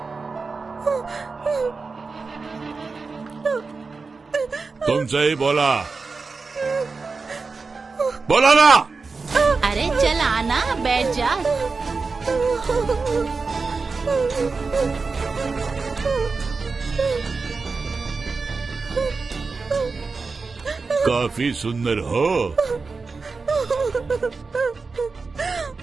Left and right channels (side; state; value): left; quieter; 4.3 dB